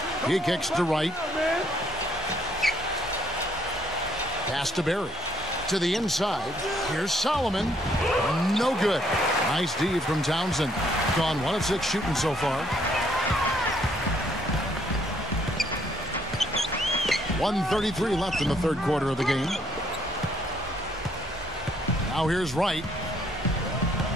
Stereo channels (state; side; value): normal; both; correlation 0.67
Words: He kicks to Wright. Pass to Barry. To the inside. Here's Solomon. No good. Nice D from Townsend. Gone 1 of 6 shooting so far. 1:33 left in the third quarter of the game. Now here's Wright.